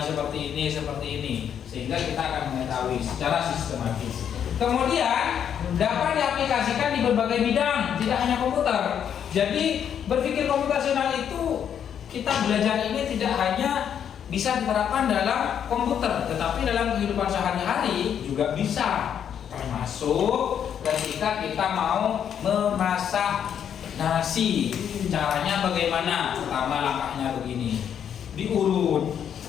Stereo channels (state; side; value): quieter; right; 8.7 dB